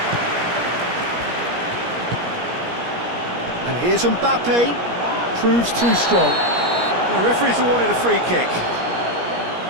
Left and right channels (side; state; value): left; late; 17 ms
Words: And here's Mbappe. Proves too strong. The referee's awarded a free kick.